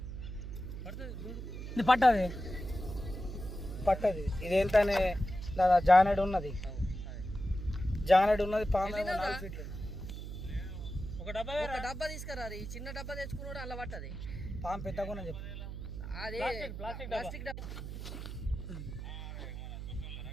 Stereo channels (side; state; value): right; noise; hum, 8 dB below the sound